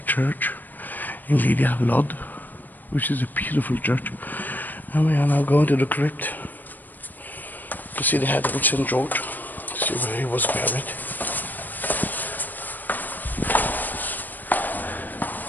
Church in Lydda, Lod, which is a beautiful church. And we are now going to the crypt to see the head of St. George, to see where he was buried.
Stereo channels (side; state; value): right; late; 0.088 ms